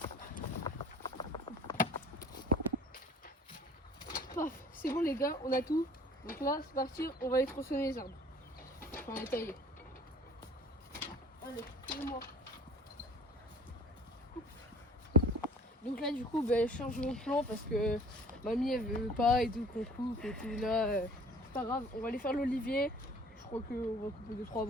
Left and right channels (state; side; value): normal; both; correlation 0.49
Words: Paf, c'est bon les gars, on a tout. Donc là, c'est parti, on va aller tronçonner les arbres. Enfin, les tailler. Allez, suivez-moi. Donc là, du coup, je change mon plan parce que mamie elle veut pas et tout qu'on coupe et tout. Là, c'est pas grave, on va aller faire l'olivier. Je crois qu'on va couper 2-3